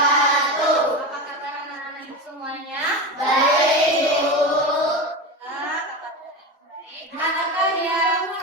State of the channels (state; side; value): normal; both; correlation 0.22